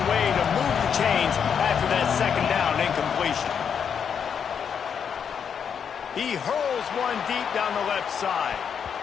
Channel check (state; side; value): quieter; right; 7.3 dB